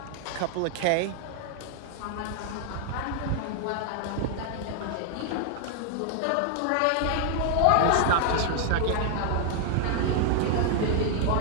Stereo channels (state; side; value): different; both; correlation 0.00